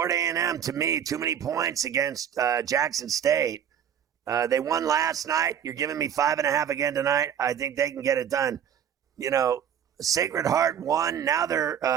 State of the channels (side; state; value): left; quieter; 8.9 dB